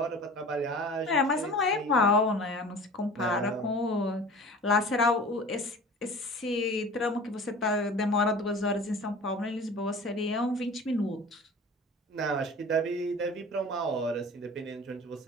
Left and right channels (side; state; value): both; normal; correlation 0.40